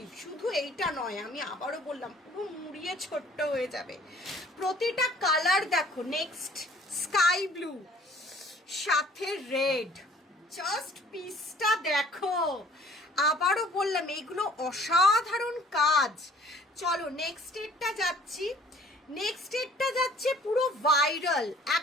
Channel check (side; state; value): both; normal; correlation 0.55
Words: শুধু এইটা নয়, আমি আবারও বললাম, পুরো মুড়িয়ে ছোট্ট হয়ে যাবে। প্রতিটা কালার দেখো, নেক্সট স্কাই ব্লু সাথে রেড, জাস্ট পিসটা দেখো। আবারও বললাম এইগুলো অসাধারণ কাজ। চলো নেক্সট এরটা যাচ্ছি। নেক্সট এরটা যাচ্ছে পুরো ভাইরাল,